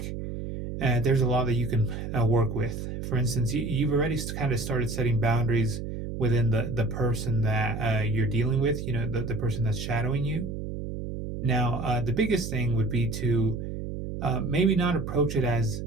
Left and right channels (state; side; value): noise; right; hum, 6 dB below the sound